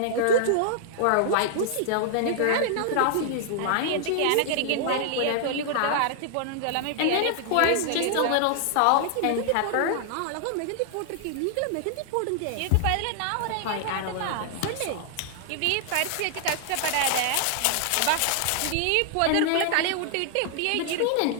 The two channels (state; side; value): different; both; correlation -0.01